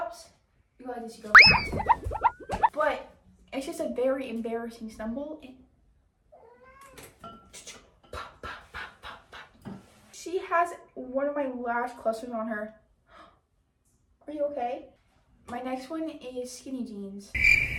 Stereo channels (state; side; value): identical; both; correlation 1.00